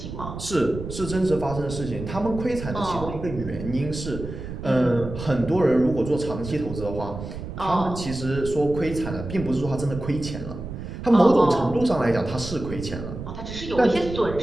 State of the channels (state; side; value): noise; right; rumble, 9 dB below the sound